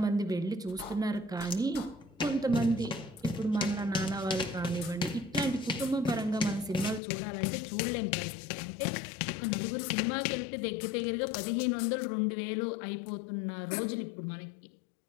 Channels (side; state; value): right; drops out; at 7.0 s